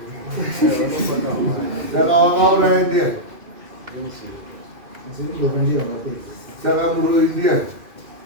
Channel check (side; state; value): left; late; 2.5 ms